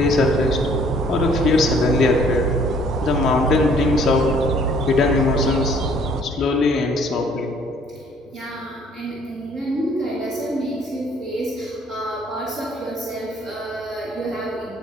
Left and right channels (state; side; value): normal; both; correlation 0.59